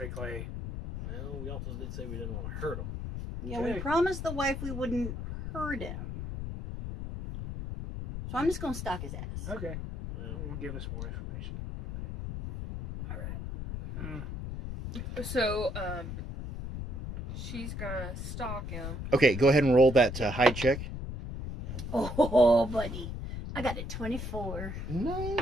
Well, we also did say we didn't want to hurt him. Yeah, Okay. we promised the wife we wouldn't hurt him. So I'm just going to stalk his ass. Okay. Well, Will give us more information. Okay. All right. So, she's gonna stalk him. Okay, go ahead and roll that hide check. Oh, buddy. I got a 24.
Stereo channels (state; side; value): noise; left; rumble, 6 dB below the sound